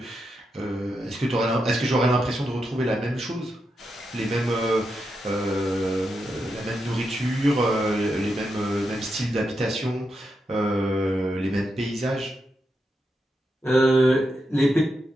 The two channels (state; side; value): normal; both; correlation 0.85